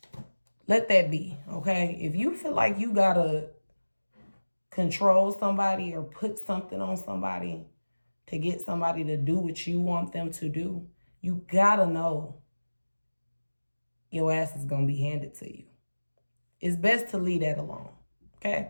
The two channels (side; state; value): both; inverted; correlation -1.00